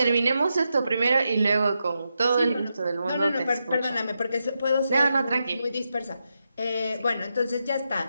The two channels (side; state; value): both; inverted; correlation -0.86